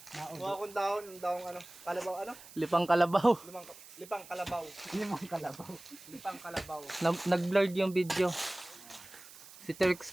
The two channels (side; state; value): right; noise; hiss, 18 dB below the sound